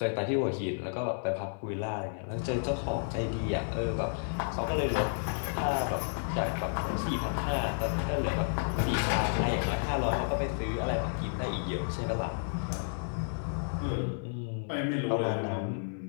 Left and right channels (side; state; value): right; silent; digital silence